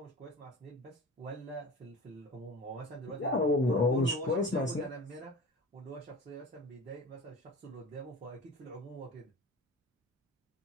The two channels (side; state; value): both; normal; correlation 0.36